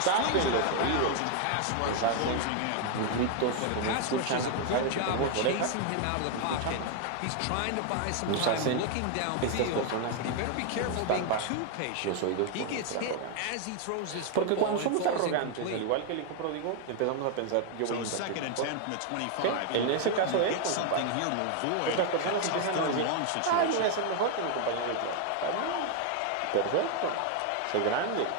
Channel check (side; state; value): both; different; correlation 0.00